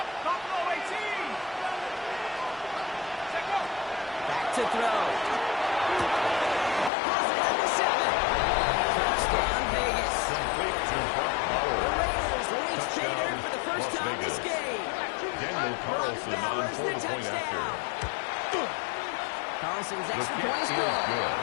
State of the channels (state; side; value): drops out; right; at 6.9 s